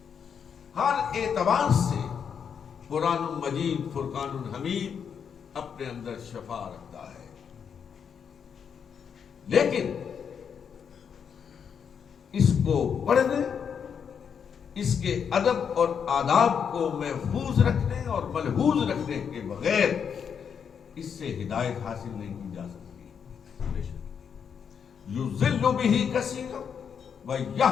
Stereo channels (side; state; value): right; quieter; 7.2 dB